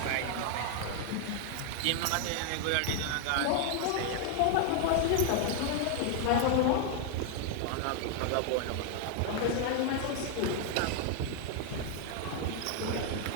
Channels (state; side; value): different; both; correlation 0.00